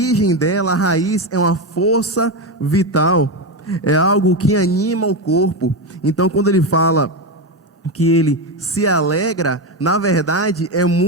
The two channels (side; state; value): both; normal; correlation 0.13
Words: dela, a raiz, é uma força vital, é algo que anima o corpo. Então, quando ele fala que ele se alegra, na verdade é